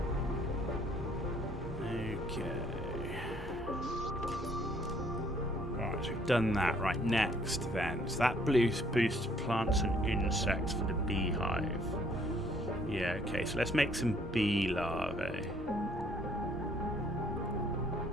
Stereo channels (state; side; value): normal; both; correlation 0.63